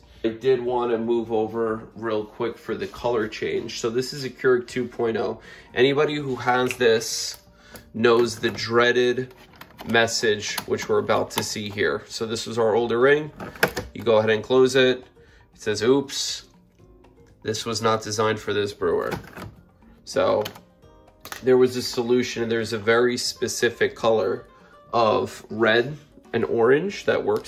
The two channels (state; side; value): identical; both; correlation 1.00